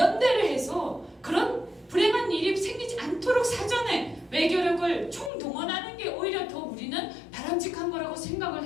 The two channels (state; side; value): drops out; right; at 5.3 s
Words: 해서 그런 불행한 일이 생기지 않도록 사전에 외교력을 총동원하는 게 오히려 더 우리는 바람직한 거라고 생각을